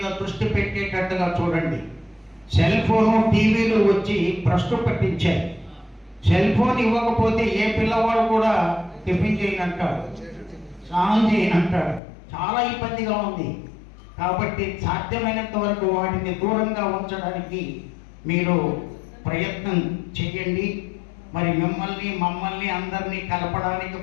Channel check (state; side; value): drops out; right; at 12.0 s